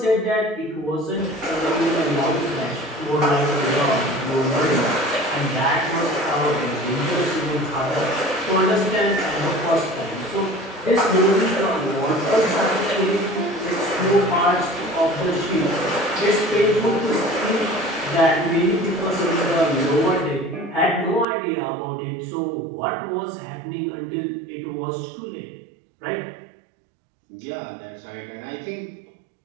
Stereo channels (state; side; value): drops out; left; at 21.2 s